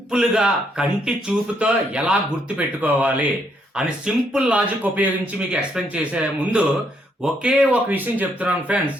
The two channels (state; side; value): normal; both; correlation 0.73